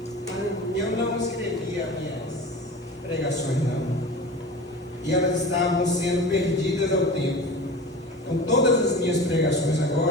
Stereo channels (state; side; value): normal; both; correlation 0.35